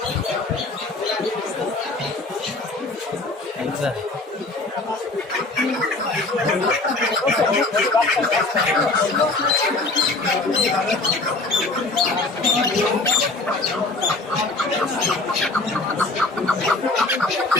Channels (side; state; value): right; quieter; 3.2 dB